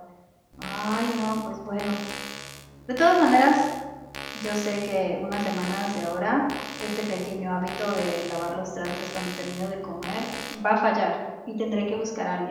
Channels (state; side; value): identical; both; correlation 1.00